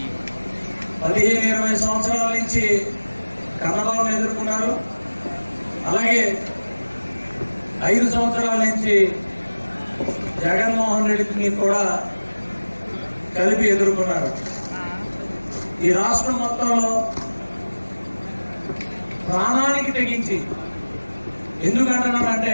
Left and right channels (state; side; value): inverted; both; correlation -1.00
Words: 15-20 సంవత్సరాల నుంచి కన్నబాబుని ఎదుర్కొన్నారు. అలాగే 5 సంవత్సరాల నుంచి జగన్మోహన్ రెడ్డిని కూడా కలిపి ఎదుర్కొన్నారు. ఈ రాష్ట్రం మొత్తంలో ప్రాణానికి తెగించి, ఎందుకంటున్నానంటే